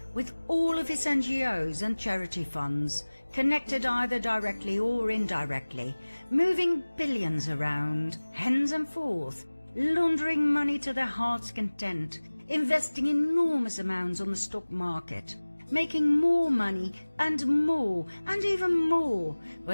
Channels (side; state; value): both; inverted; correlation -1.00